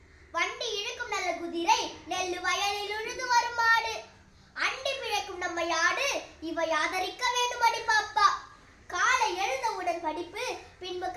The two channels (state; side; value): identical; both; correlation 1.00